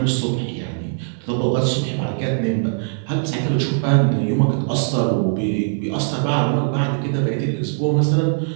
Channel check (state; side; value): silent; left; 60 dB below the other